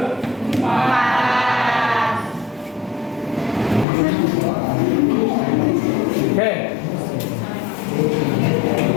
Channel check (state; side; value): drops out; right; at 3.9 s